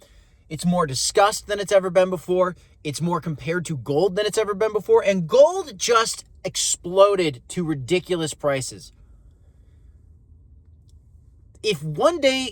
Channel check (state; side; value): identical; both; correlation 1.00